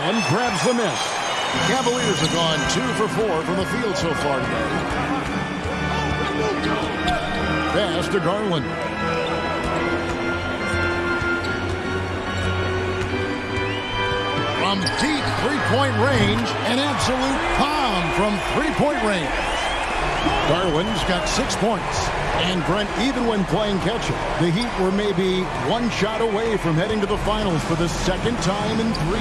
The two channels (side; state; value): both; identical; correlation 1.00